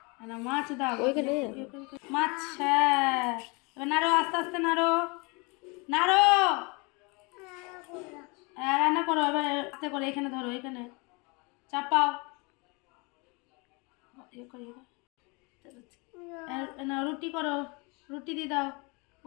না মাছ দাও ওইখানে, মাছ। হ্যাঁ এবার নাড়ো, আস্তে আস্তে নাড়ো, নাড়ো। রান্না করো এবার আস্তে করে, এখানে ধরো, এখানে চাপাও। না রুটি করো, রুটি দিয়ে দাও,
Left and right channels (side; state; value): right; quieter; 29.0 dB